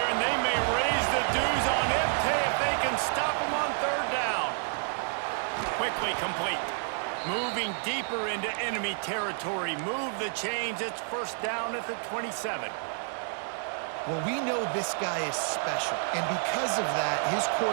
and they may raise the dues on Ipte if they can stop him on 3rd down. Quickly complete. Moving deeper into enemy territory. Move the chains. It's 1st down at the 27. Well, we know this guy is special, and because of that, his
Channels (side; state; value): left; silent; 58 dB below the other